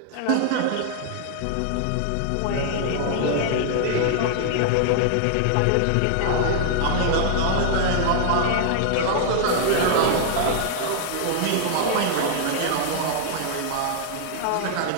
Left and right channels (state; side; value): different; both; correlation 0.00